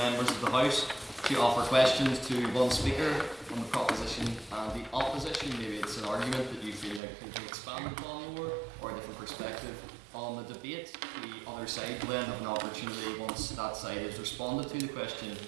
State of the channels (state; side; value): drops out; left; at 7.0 s